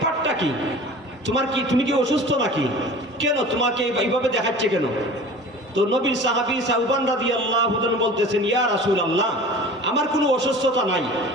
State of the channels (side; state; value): both; normal; correlation 0.40